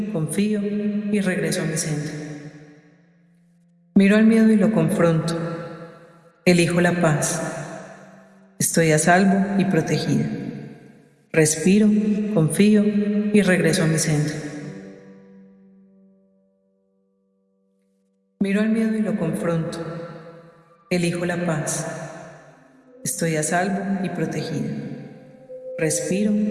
confío y regreso a mi centro. Miro al miedo y lo confronto. Elijo la paz. Estoy a salvo y protegida. Respiro, confío y regreso a mi centro. Miro al miedo y lo confronto. Elijo la paz. Estoy a salvo y protegida. Respiro,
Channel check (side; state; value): both; identical; correlation 1.00